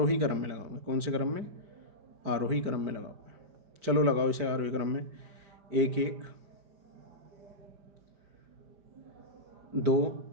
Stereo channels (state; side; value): late; left; 5.0 ms